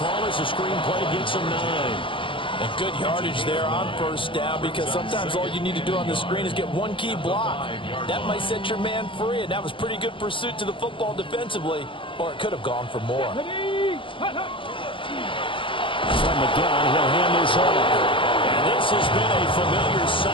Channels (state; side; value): late; right; 0.25 ms